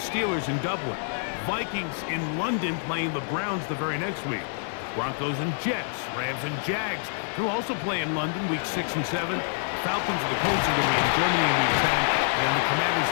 Steelers in Dublin. Vikings in London playing the Browns the very next week. Broncos and Jets. Rams and Jags who also play in London week 6 and 7. Falcons and the Colts are going to be in Germany in week 10. And the Commanders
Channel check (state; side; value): silent; right; digital silence